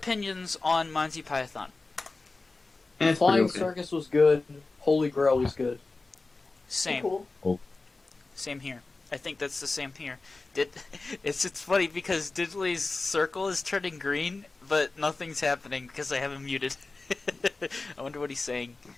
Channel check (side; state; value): right; quieter; 3.6 dB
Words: on Monty Python? Flying Circus was good. Holy Grail was good. Same. Cool. Same here. I think that's the same here. It's funny because Diddley's circle is turning green, but nothing's happening because I have him muted. I wonder what he's saying.